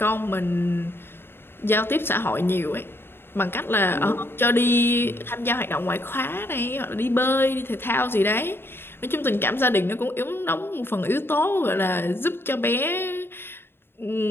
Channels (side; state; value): right; late; 0.11 ms